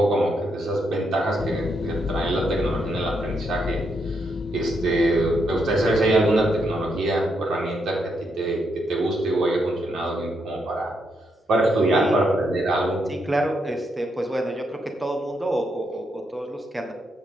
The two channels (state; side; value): normal; both; correlation 0.79